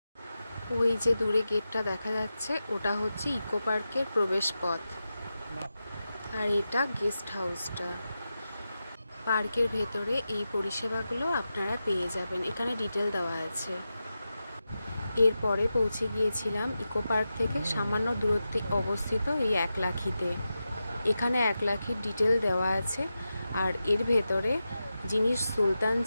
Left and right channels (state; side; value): inverted; both; correlation -0.91